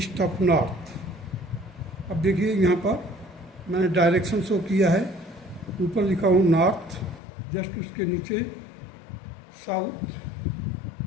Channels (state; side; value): drops out; right; at 7.2 s